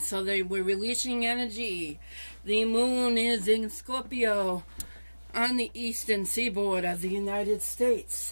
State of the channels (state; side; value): inverted; both; correlation -1.00